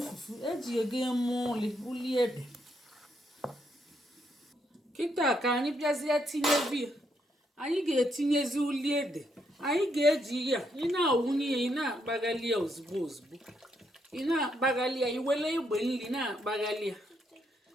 fufu eji ego eme uli ede kịta ka anyị bịazie tinyezi ya. Anyị ga-etinyezi uli ede. Anyị ga-eji ya ị na-awụnye ya, ị na-akpaghali ya ozugbo ozugbo, ị na-akpaghali ya, iwele egbe nri na-akpaghali ya,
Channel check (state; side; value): normal; both; correlation 0.76